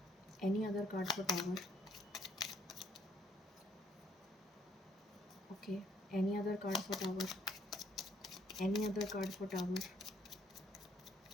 any other card for tower. Okay, any other card for tower, any other card for tower,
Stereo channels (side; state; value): both; normal; correlation 0.67